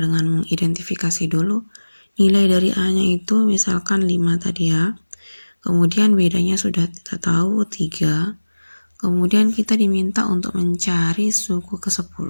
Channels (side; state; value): both; inverted; correlation -1.00